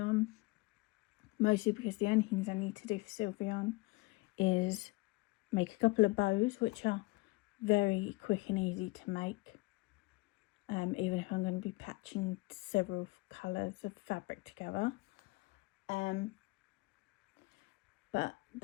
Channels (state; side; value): quieter; right; 23.5 dB